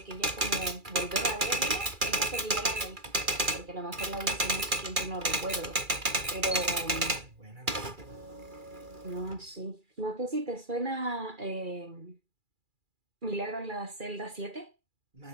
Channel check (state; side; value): late; left; 2.4 ms